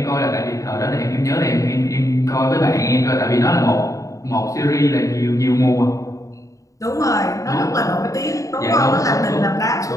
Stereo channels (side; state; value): right; late; 0.16 ms